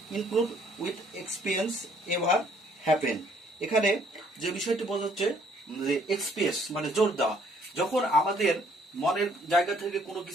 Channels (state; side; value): normal; both; correlation 0.63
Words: include with experience ever happen. এখানে যে বিষয়টি বোঝাচ্ছে যে এক্সপ্রেস মানে জোর দেওয়া, যখন আমাদের মনের জায়গা থেকে কোনো